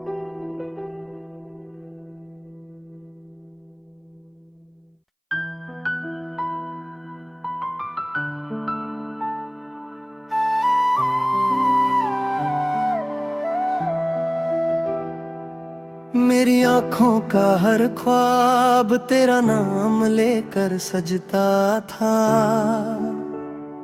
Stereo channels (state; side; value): identical; both; correlation 1.00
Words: मेरी आंखों का हर ख्वाब तेरा नाम लेकर सजता था,